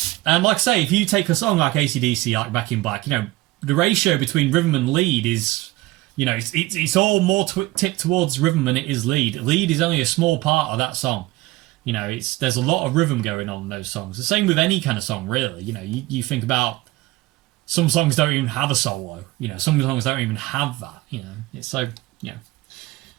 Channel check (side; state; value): left; quieter; 19.3 dB